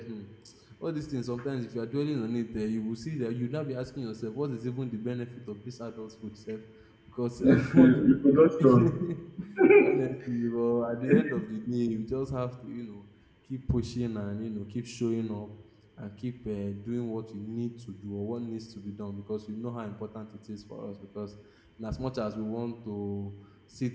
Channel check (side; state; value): both; identical; correlation 1.00